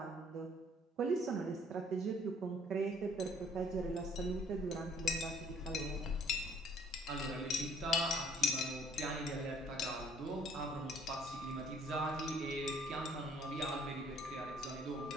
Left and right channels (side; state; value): both; normal; correlation 0.59